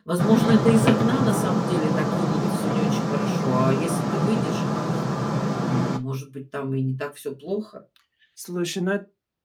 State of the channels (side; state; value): both; identical; correlation 1.00